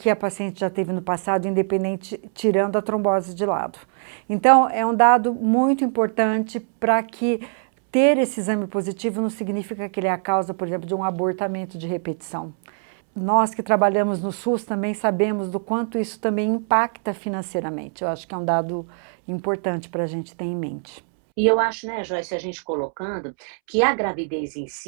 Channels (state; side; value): silent; left; 64 dB below the other